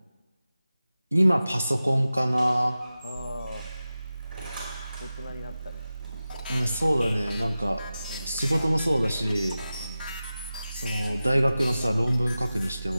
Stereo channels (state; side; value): inverted; both; correlation -0.94